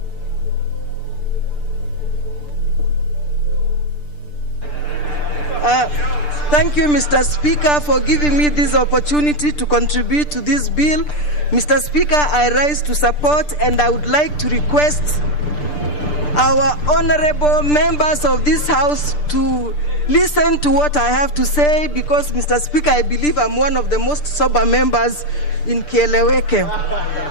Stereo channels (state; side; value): late; right; 6.8 ms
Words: Thank you, Mr. Speaker, for giving me this opportunity to contribute to this bill. Mr. Speaker, I rise to support, and I would like to request our honorable members of this House to listen to what I have to say, because, Mr. Speaker, I believe I'm one of the most sober members in Kieleweke.